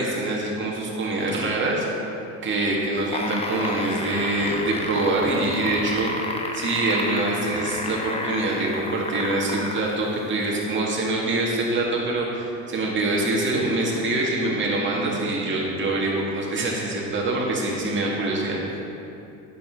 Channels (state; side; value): normal; both; correlation 0.20